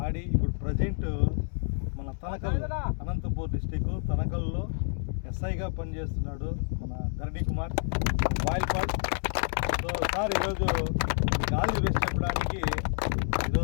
ఆడి ఇప్పుడు ప్రజెంట్ మన తనకల్ అనంతపూర్ డిస్టిక్ తనకల్లో ఎస్ఐగా పనిచేస్తున్నాడు మన ధరణి కుమార్ బాయిల్పాట్. సో సార్ ఈరోజు ఆల్ ది బెస్ట్ చెప్పడానికి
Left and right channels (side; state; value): right; silent; 59 dB below the other